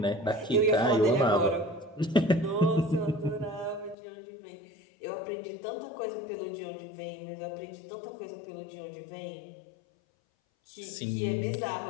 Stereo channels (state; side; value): drops out; right; at 4.0 s